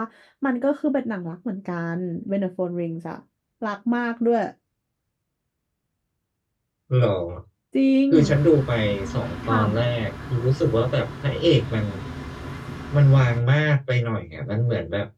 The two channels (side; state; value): both; identical; correlation 1.00